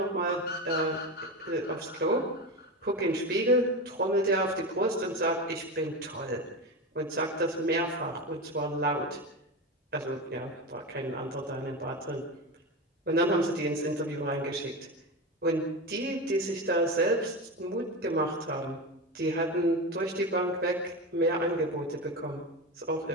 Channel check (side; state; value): both; normal; correlation 0.21